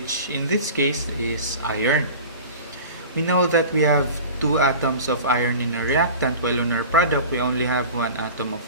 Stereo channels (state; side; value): inverted; both; correlation -0.36